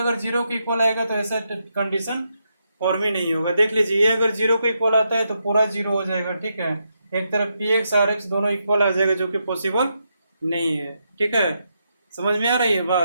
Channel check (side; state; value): both; inverted; correlation -0.82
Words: 0 के इक्वल आएगा तो ऐसा कंडीशन और भी नहीं होगा। देख लीजिए, ये अगर 0 के इक्वल आता है तो पूरा 0 हो जाएगा, ठीक है। एक तरफ px rx दोनों इक्वल आ जाएगा, जो कि पॉसिबल नहीं है, ठीक है। समझ में आ रही है